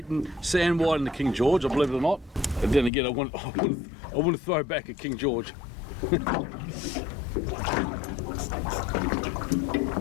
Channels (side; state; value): right; drops out; at 2.9 s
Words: sand whiting than King George, I believe it or not. But then again, I want to throw back a King George. Bit